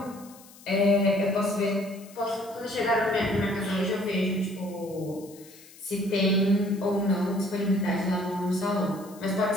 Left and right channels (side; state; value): left; noise; hiss, 22 dB below the sound